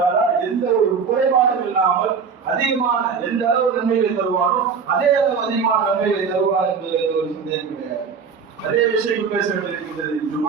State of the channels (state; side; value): quieter; left; 5.8 dB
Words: எந்த ஒரு குறைபாடும் இல்லாமல் அதிகமான எந்த அளவு நன்மைகளை தருவாரோ அதே அளவு அதிகமான நன்மைகளை தருவார் என்பது ஒரு சந்தேகம் கிடையாது. அதே விஷயம் பேச வேண்டியிருக்கின்றது.